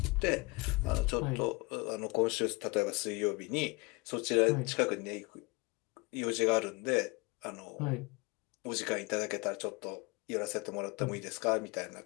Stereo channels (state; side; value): quieter; right; 27.1 dB